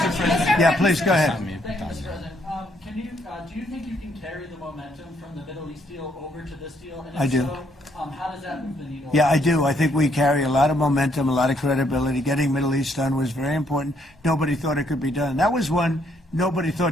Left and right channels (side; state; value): both; normal; correlation 0.71